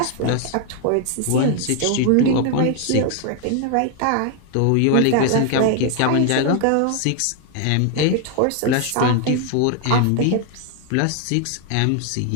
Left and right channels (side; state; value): both; different; correlation 0.00